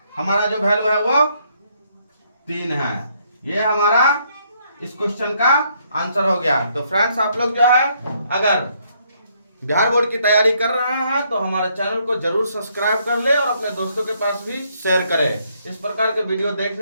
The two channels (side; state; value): both; inverted; correlation -0.71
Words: हमारा जो वैल्यू है वो 3 है। ये हमारा इस क्वेश्चन का आंसर हो गया। तो फ्रेंड्स, आप लोग जो है अगर बिहार बोर्ड की तैयारी कर रहे हैं तो हमारे चैनल को जरूर सब्सक्राइब कर ले और अपने दोस्तों के पास भी शेयर करें। इस प्रकार के वीडियो